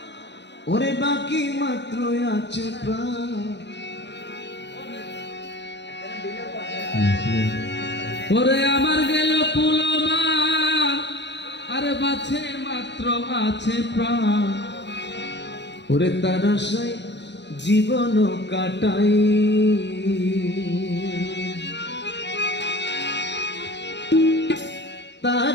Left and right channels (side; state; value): right; late; 0.51 ms